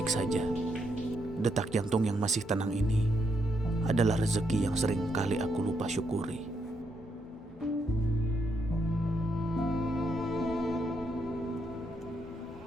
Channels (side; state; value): both; normal; correlation 0.78